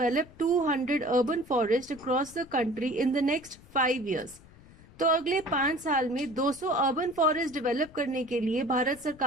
200 urban forests across the country in the next 5 years. तो अगले 5 साल में 200 अर्बन फॉरेस्ट डेवलप करने के लिए भारत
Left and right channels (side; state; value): left; noise; rumble, 23 dB below the sound